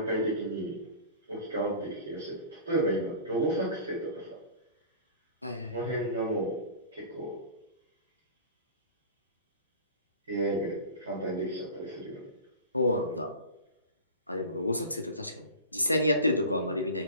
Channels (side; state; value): both; inverted; correlation -0.37